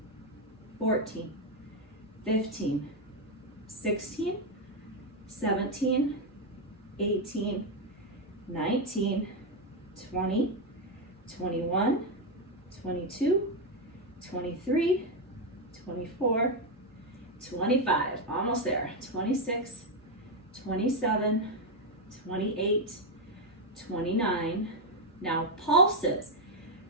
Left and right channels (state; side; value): normal; both; correlation 0.04